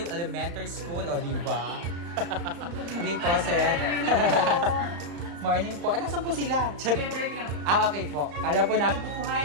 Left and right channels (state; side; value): late; left; 35 ms